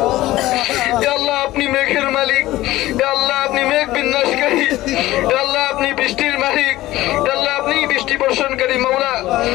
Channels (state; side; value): quieter; right; 16.6 dB